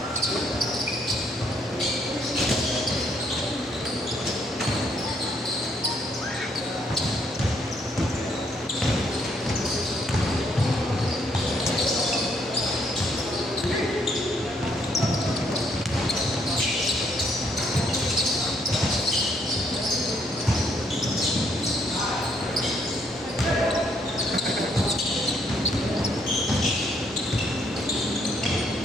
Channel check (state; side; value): normal; both; correlation 0.70